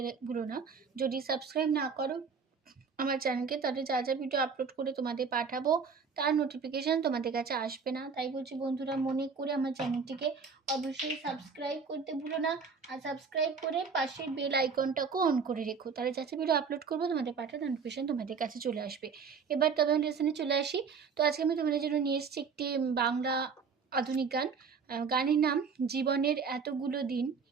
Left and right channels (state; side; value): quieter; left; 5.6 dB